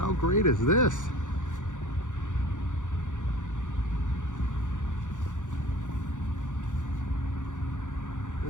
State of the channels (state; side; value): late; right; 0.86 ms